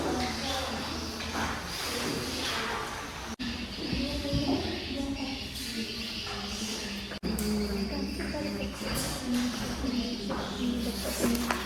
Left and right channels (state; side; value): identical; both; correlation 1.00